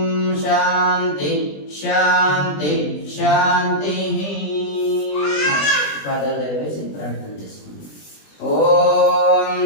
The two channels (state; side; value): late; right; 20 ms